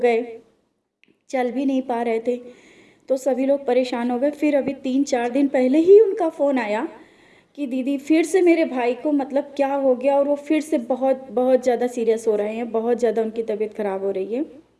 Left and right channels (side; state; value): both; identical; correlation 1.00